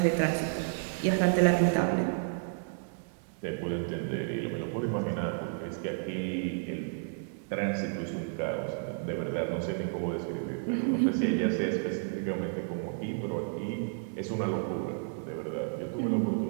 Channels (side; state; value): left; silent; digital silence